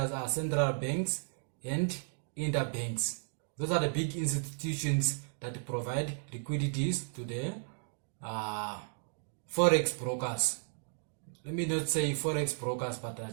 are central banks and interbanks. Those are the big institutions that provide liquidities to the Forex brokers. Let me not say Forex brokers, but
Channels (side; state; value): left; silent; 55 dB below the other